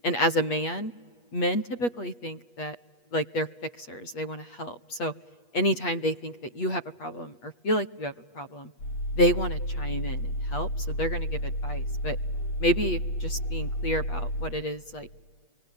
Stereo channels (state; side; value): late; right; 8.4 ms